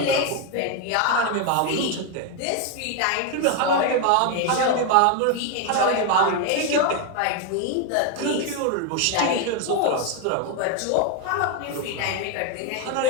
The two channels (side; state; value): both; different; correlation 0.01